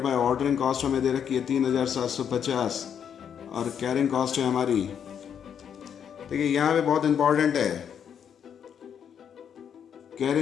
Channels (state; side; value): quieter; right; 8.2 dB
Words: बाय ऑर्डरिंग कॉस्ट हमें दे रखी है 3,750, और कैरिंग कॉस्ट है हमारी। देखिए, यहाँ पे बहुत इंपॉर्टेंट है,